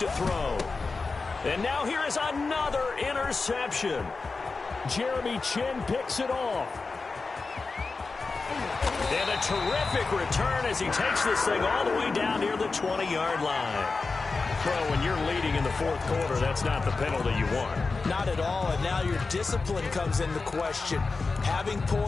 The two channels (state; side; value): quieter; right; 4.1 dB